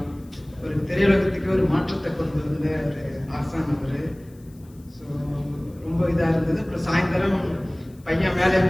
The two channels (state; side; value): noise; left; hiss, 30 dB below the sound